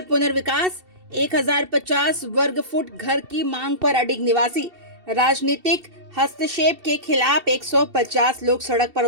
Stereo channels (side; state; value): left; late; 2.7 ms